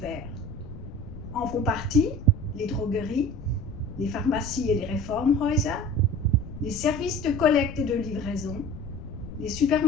En font partie les drogueries, les pharmacies et les Reformhäuser, les services de collecte et de livraison, les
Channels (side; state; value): left; noise; rumble, 12 dB below the sound